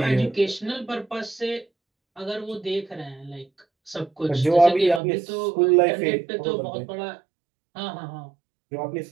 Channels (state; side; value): drops out; left; at 5.0 s